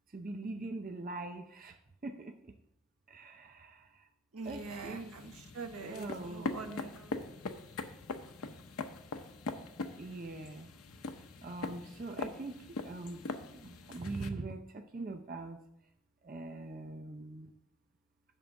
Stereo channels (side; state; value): both; normal; correlation 0.42